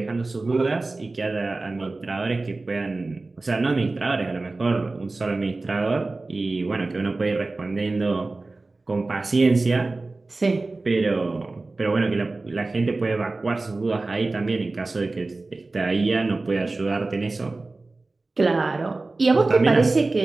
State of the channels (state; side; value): quieter; left; 3.3 dB